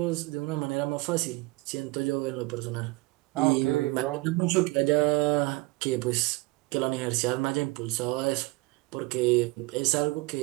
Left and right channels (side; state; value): left; quieter; 22.9 dB